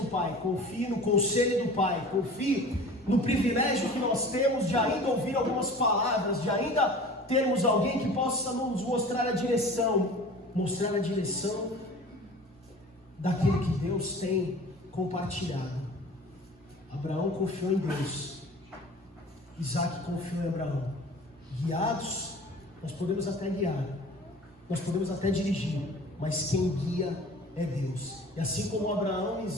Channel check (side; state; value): both; normal; correlation 0.41